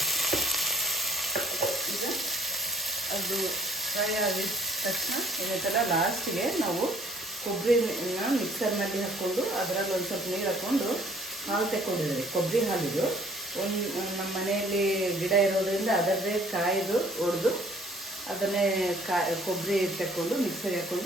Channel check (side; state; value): both; normal; correlation 0.58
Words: ಈಗ ಅದು ಫ್ರೈ ಆಗಿದ ತಕ್ಷಣ ಏನೈತಲ್ಲ, ಲಾಸ್ಟಿಗೆ ನಾವು ಕೊಬ್ಬರಿನ ಮಿಕ್ಸರ್ನಲ್ಲಿ ಹಾಕ್ಕೊಂಡು ಅದರಲ್ಲಿ ಒಂದು ಸ್ವಲ್ಪ ನೀರು ಹಾಕ್ಕೊಂಡು ಹಾಲು ತೆಕ್ಕೊಂಡಿದ್ದೀವಿ. ಕೊಬ್ಬರಿ ಹಾಲಿದು ನಮ್ಮ ಮನೆಯಲ್ಲಿ ಗಿಡ ಇರೋದ್ರಿಂದ ಅದರದೇ ಕಾಯ್ದು ಒಡೆದು ಅದನ್ನೇ ಕೊಬ್ಬರಿ ತೆಕ್ಕೊಂಡು ಮಿಕ್ಸರ್ಗೆ